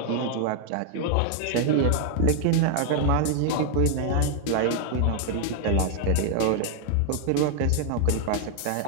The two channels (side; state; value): both; different; correlation 0.00